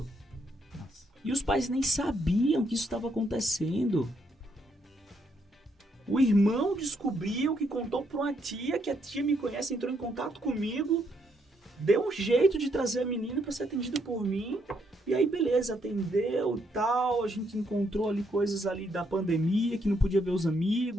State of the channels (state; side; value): normal; both; correlation 0.74